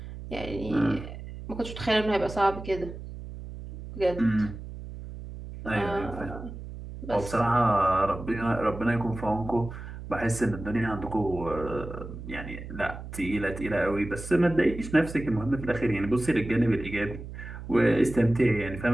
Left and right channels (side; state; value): right; noise; hum, 11 dB below the sound